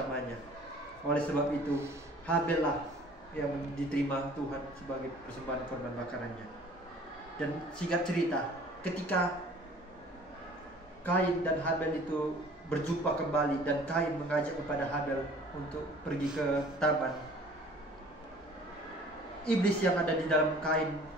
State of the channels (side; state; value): both; normal; correlation 0.50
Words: Oleh sebab itu, Habel lah yang diterima Tuhan sebagai persembahan korban bakarannya. Dan singkat cerita, ketika Kain dan Habel itu berjumpa kembali dan Kain mengajak kepada Habel untuk pergi ke taman, iblis yang ada di dalam Kain